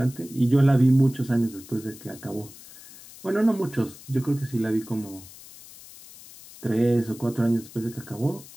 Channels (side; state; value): left; noise; hiss, 19 dB below the sound